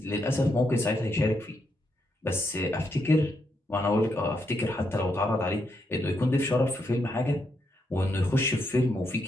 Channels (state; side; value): normal; both; correlation 0.79